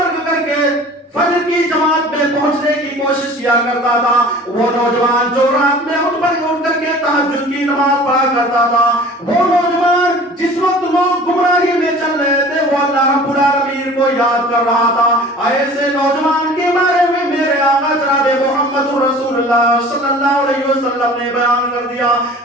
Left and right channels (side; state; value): both; normal; correlation 0.44